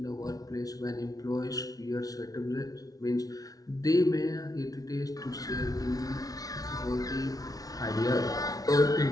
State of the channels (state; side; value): late; right; 0.18 ms